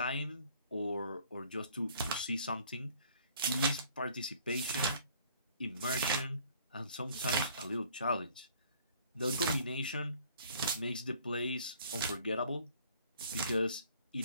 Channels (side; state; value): both; inverted; correlation -0.57